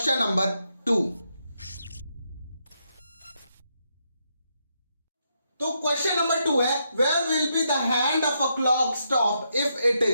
नंबर 2। तो क्वेश्चन नंबर 2 है, where will be the hand of a clock stop if it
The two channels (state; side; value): inverted; both; correlation -0.80